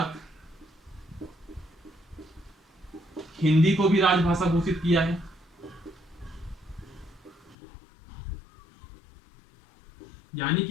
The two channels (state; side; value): drops out; right; at 7.6 s